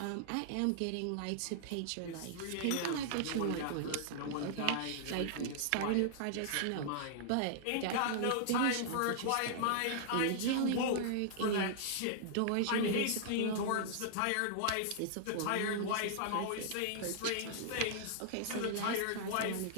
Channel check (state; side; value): different; both; correlation -0.01